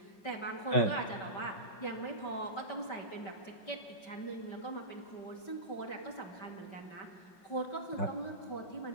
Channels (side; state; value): right; late; 5.2 ms